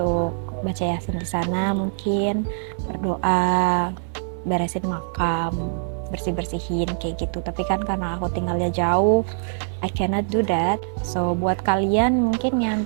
baca yasin di sana, mungkin berdoa, beresin makam, bersih-bersihin kayak gitu. Tapi kan karena aku tinggalnya jauh, I cannot do that. So buat kalian mungkin yang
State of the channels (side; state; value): left; silent; 63 dB below the other